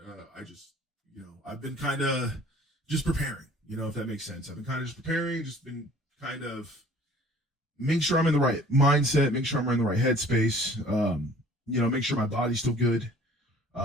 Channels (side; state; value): both; normal; correlation 0.51